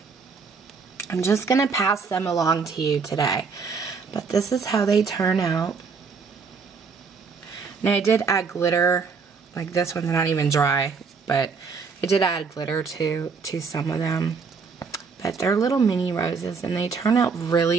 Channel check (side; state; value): left; quieter; 5.2 dB